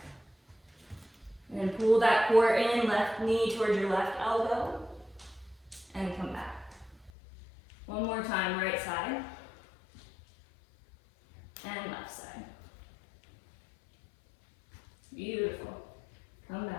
And then pull that core in, left knee towards your left elbow, and come back. One more time, right side, and left side. Beautiful. Come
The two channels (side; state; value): right; drops out; at 7.1 s